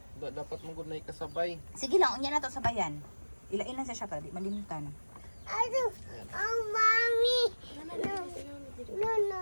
Dapat mo gud na ikasabay. Sige lang, unya na to sa bayan. Ilain lang siya para di malimtan.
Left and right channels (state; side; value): inverted; both; correlation -1.00